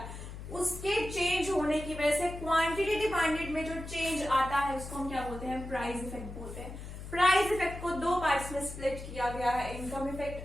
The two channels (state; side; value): noise; left; hum, 10 dB below the sound